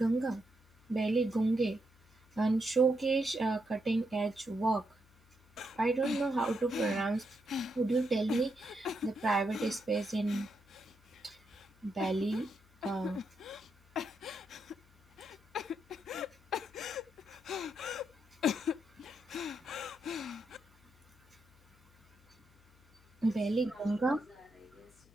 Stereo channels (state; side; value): noise; left; hum, 29 dB below the sound